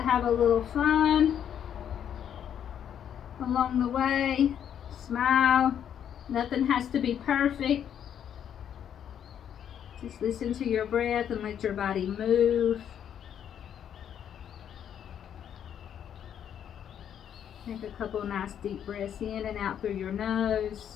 have a little fun along the way. Smile. Nothing has to be perfect. Just listen to your breath and let your body move. Take a couple nice deep breaths in and out through your nose.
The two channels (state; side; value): quieter; right; 9.2 dB